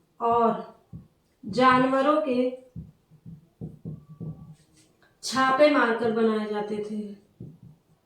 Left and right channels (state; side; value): identical; both; correlation 1.00